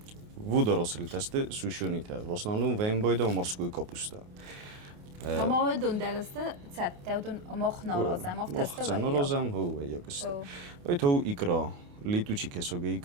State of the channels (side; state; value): left; late; 28 ms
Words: وداراسلی تسته سوشونیته в основном вем бойда морскую капуста اما دون درسته تیودون مخ نارازم مخ تسته مخ نارازم هو یکست ای تو ایکرا لیتوچی کساگه